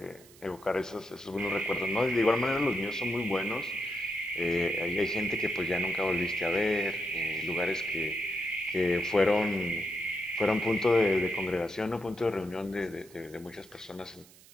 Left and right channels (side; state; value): right; noise; hiss, 24 dB below the sound